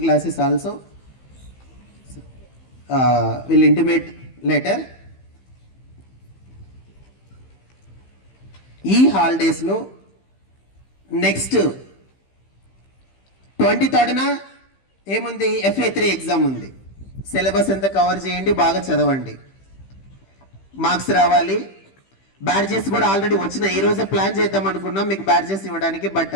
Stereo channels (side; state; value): right; late; 15 ms